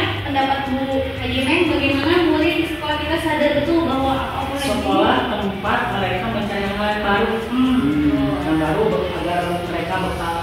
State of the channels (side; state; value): both; identical; correlation 1.00